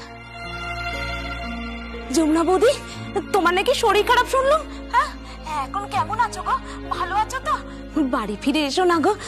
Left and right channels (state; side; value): identical; both; correlation 1.00